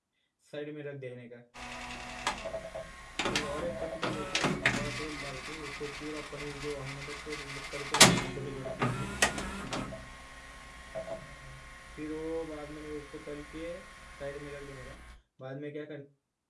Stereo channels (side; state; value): both; identical; correlation 1.00